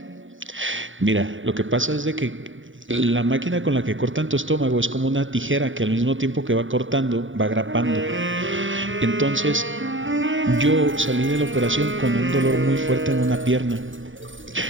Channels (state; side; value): late; left; 0.57 ms